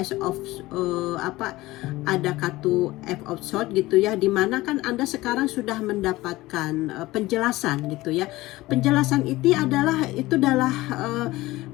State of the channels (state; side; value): quieter; right; 18.7 dB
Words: of ada kartu F of Swords gitu ya, dimana kan Anda sekarang sudah mendapatkan penjelasan gitu ya. Penjelasan itu adalah